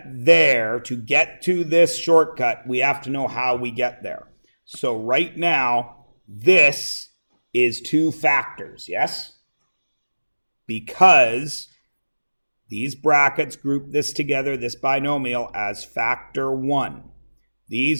there, to get to this shortcut, we have to know how we get there. So right now, this is two factors, yes? Because these brackets group this together, this binomial, as factor 1.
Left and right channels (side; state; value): both; inverted; correlation -1.00